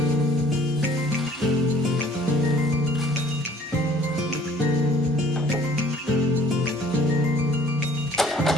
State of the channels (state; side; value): normal; both; correlation 0.56